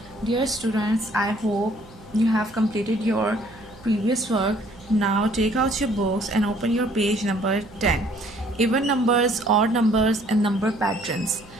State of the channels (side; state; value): right; noise; hum, 22 dB below the sound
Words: Dear students, I hope you have completed your previous work. Now take out your books and open your page number 10. Even numbers, odd numbers, and number patterns.